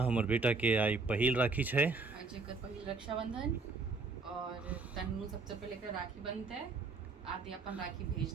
हमर बेटा के आई पहिल राखी है। आज एकर पहिल रक्षाबंधन और तन्नू सबसे पहले एकर राखी बनते आदि अपन राखी भेज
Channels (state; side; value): quieter; left; 4.0 dB